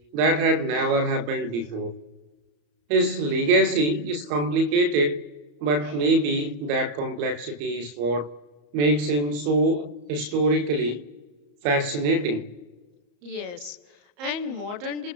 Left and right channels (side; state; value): left; late; 34 ms